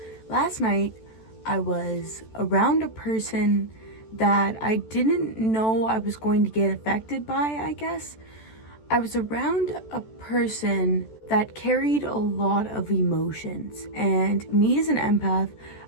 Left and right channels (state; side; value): late; right; 14 ms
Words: last night I was around a person that I didn't know I was going to get affected by, I guess. I was around a person that carried a lot of emotions, and me as an empath,